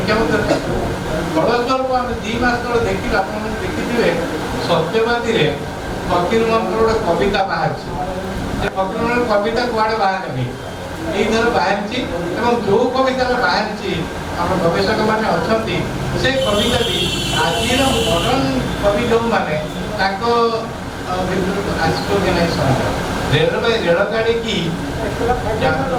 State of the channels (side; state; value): both; identical; correlation 1.00